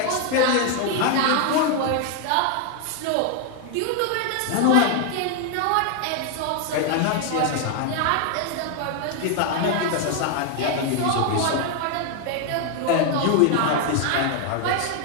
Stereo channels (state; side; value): different; both; correlation 0.00